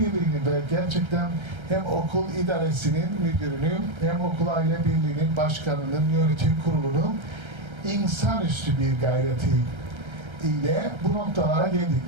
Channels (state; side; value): late; left; 1.3 ms